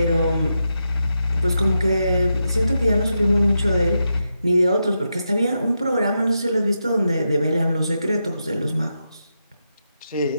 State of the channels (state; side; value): inverted; both; correlation -0.86